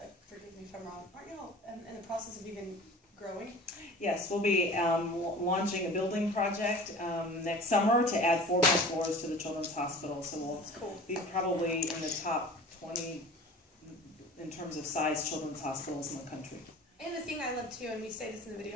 forgive me if I'm wrong, aren't y'all in the process of even growing? Yes, we'll be launching a building project next summer to add 4 more floors to the children's hospital. So we'll be probably in the top 20 in terms of size children's hospitals in the country. And the thing I love too, and we say this in the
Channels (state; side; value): normal; both; correlation 0.41